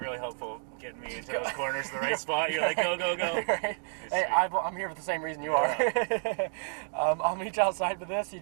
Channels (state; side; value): silent; left; 58 dB below the other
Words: really helpful getting me into those corners in the right spot. You're like, go, go, go. Right. Hey, I'm here for the same reason you are. I'll meet you outside with this. You